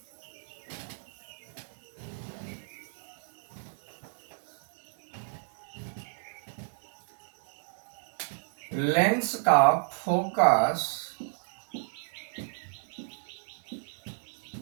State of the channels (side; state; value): left; silent; digital silence